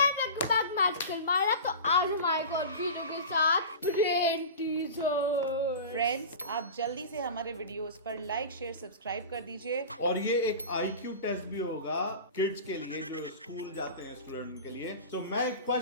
welcome back magical Myra. तो आज हमारे को वीडियो के साथ ब्रेन टीजर. फ्रेंड्स, आप जल्दी से हमारे वीडियोस पर लाइक, शेयर, सब्सक्राइब कर दीजिए. और ये एक IQ टेस्ट भी होगा किड्स के लिए जो स्कूल जाते हैं स्टूडेंट के लिए. तो मैं एक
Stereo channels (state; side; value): inverted; both; correlation -0.32